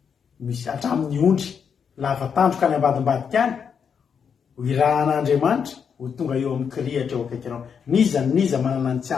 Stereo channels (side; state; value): right; quieter; 6.9 dB